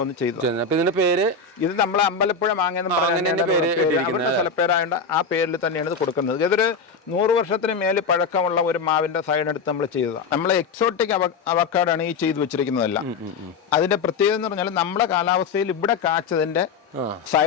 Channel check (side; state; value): right; quieter; 4.9 dB